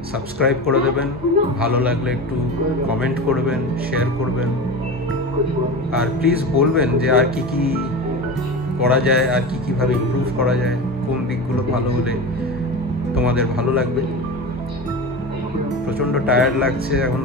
সাবস্ক্রাইব করে দেবেন, ভালো লাগলে একটু কমেন্ট করবেন, শেয়ার করবেন, আর প্লিজ বলবেন যে আর কি কি করা যায়, আর কি কিভাবে ইমপ্রুভ করা যায়, কোন দিকগুলো ভালো হলে তোমাদের ভালো লাগবে। প্রচণ্ড টায়ার্ড লাগছে, এখন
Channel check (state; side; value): normal; both; correlation 0.27